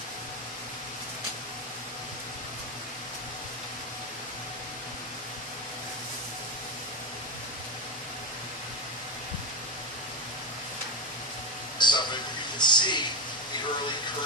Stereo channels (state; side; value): normal; both; correlation 0.14